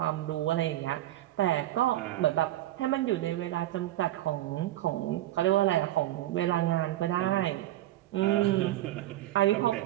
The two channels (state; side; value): quieter; left; 14.7 dB